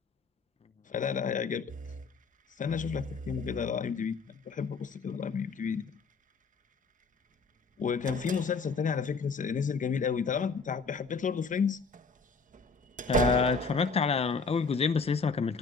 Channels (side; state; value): right; quieter; 4.6 dB